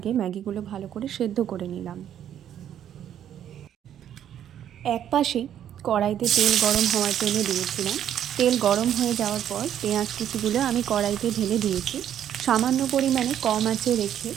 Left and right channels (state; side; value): quieter; left; 10.2 dB